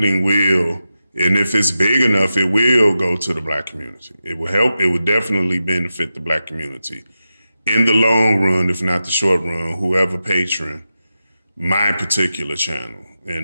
will, and if it's big enough, it will go to the Black community. It will help, it would definitely benefit the Black community. In the long run, if not the short run, whoever patron my particular channel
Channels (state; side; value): inverted; both; correlation -0.91